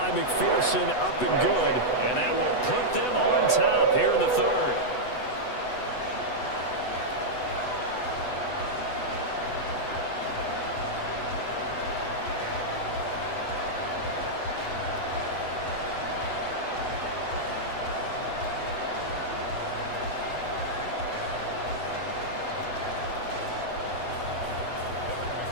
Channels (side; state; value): right; late; 8.0 ms